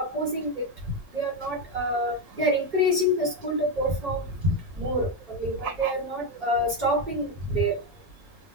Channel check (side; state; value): both; normal; correlation 0.09